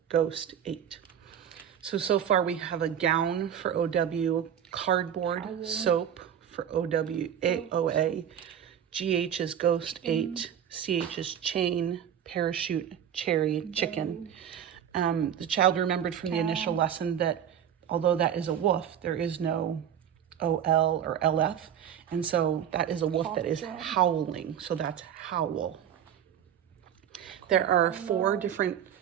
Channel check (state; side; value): quieter; left; 9.3 dB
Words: Ghost, 8. So far we have a gown for OW, cardboard, soap for OA, GH is ghost, 8, CH is chain, parachute, cherry, chicken. The child remembered from the initial lesson that although that is a wolf, there is no OL or LF. And so that is a wolf that is howling. So that's howl. There are 4 different